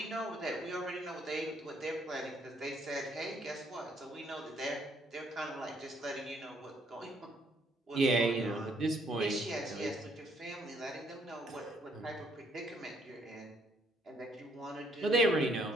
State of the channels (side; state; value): both; normal; correlation 0.68